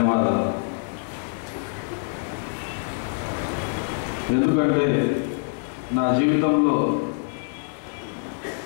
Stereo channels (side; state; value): right; silent; digital silence